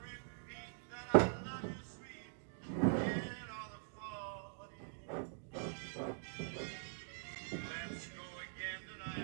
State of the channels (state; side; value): silent; left; digital silence